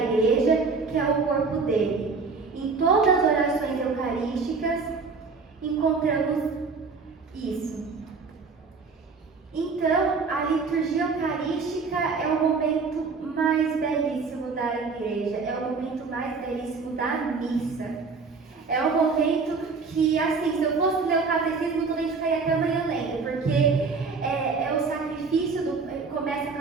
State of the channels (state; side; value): quieter; left; 4.6 dB